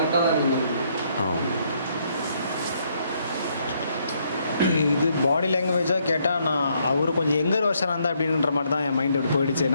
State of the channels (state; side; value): inverted; both; correlation -0.72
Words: இது பாடி லாங்குவேஜாக கேட்டால் நான் அவர் கொஞ்சம் எங்கர் வருஷனாக இருந்தால் அப்படின்ற மாதிரி தான் என் மைண்ட் அப்படி போயிடுச்சு.